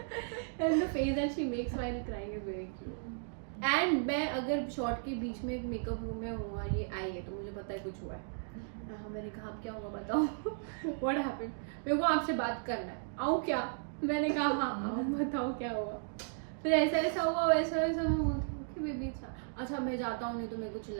And the face that she makes while crying is very cute. And मैं अगर शॉट के बीच में मेकअप रूम में हूँ, ये आई है तो मुझे पता है कुछ हुआ है. हाँ मैंने कहा अब क्या होगा बताओ. What happened? मेरे को आपसे बात करना है, आऊँ क्या? मैंने कहा हाँ आओ, बताओ क्या हुआ. फिर ऐसा हुआ, वैसा मैं बोलती हूँ बेबी अच्छा मैं जाता हूँ, नहीं तो मेरे को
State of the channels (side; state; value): left; silent; digital silence